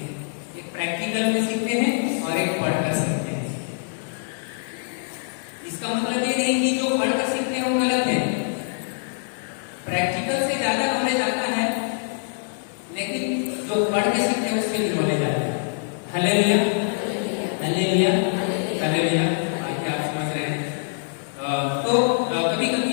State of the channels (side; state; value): right; silent; digital silence